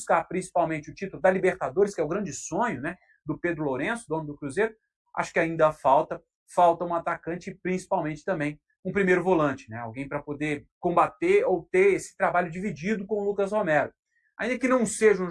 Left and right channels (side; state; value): both; identical; correlation 1.00